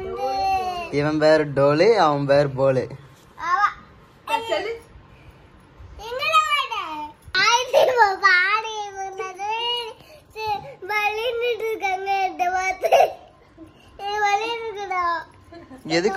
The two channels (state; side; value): identical; both; correlation 1.00